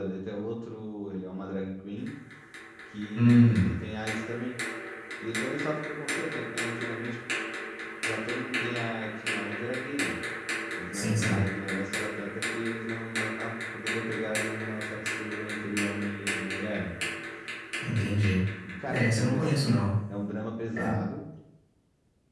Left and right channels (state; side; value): identical; both; correlation 1.00